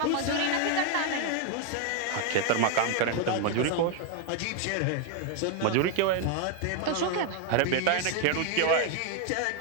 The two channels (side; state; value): both; different; correlation 0.01